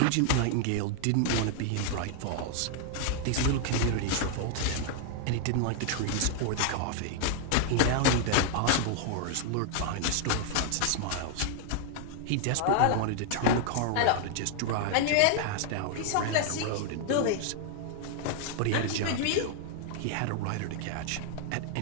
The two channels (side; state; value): both; different; correlation 0.00